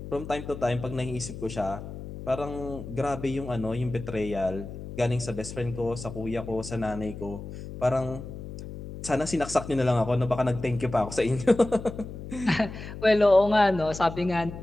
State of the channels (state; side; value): noise; left; hum, 11 dB below the sound